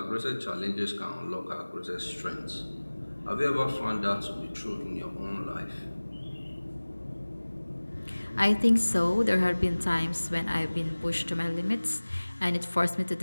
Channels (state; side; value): inverted; both; correlation -1.00